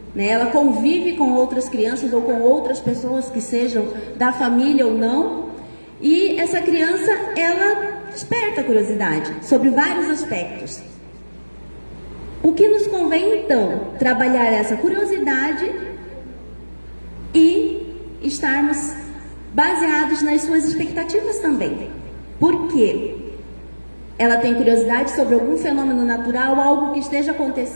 né? Ela convive com outras crianças ou com outras pessoas que sejam da família ou não, e essa criança, ela desperta a curiosidade sobre vários aspectos. O que nos convém então? Trabalhar essa curiosidade e estarmos baseados nas suas expectativas também. Por quê? Ela tem curiosidade sobre algum fenômeno natural, algo que esteja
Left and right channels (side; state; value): both; inverted; correlation -1.00